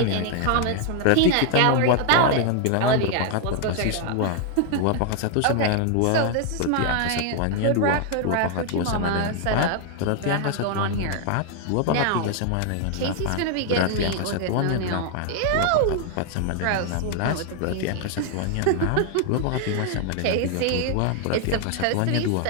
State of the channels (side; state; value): both; different; correlation 0.00